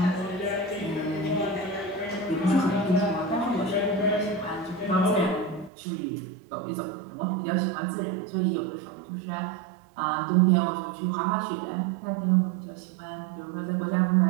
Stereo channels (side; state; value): left; drops out; at 5.7 s